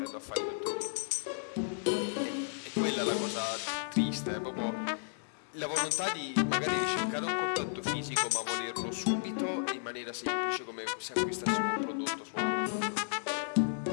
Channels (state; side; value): silent; right; digital silence